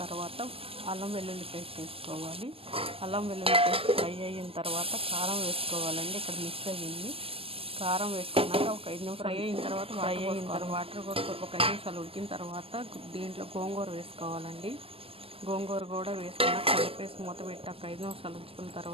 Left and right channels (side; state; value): left; late; 0.27 ms